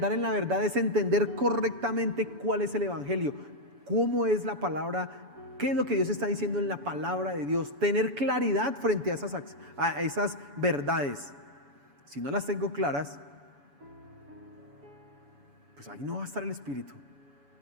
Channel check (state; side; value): late; left; 7.0 ms